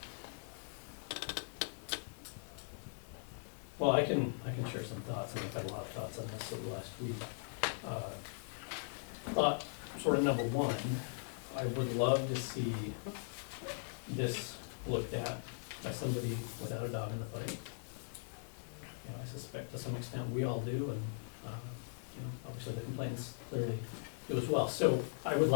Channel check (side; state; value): right; silent; digital silence